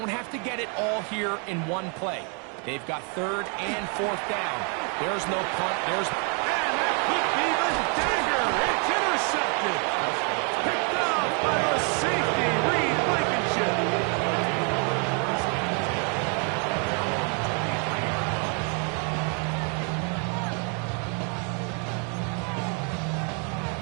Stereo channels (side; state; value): left; quieter; 38.3 dB